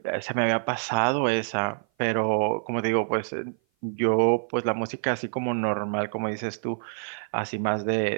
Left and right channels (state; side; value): silent; left; 56 dB below the other